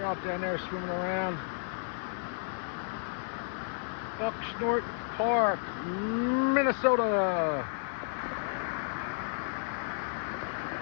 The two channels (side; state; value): right; silent; digital silence